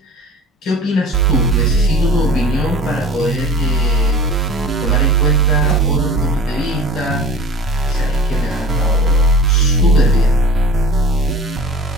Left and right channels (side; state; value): both; normal; correlation 0.41